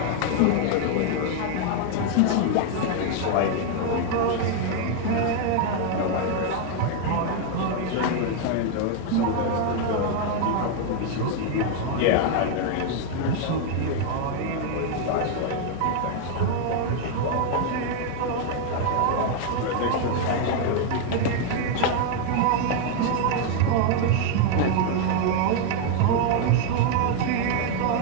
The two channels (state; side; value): different; both; correlation 0.00